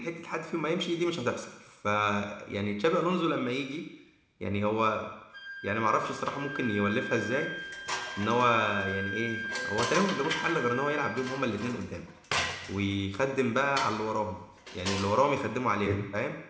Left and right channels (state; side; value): identical; both; correlation 1.00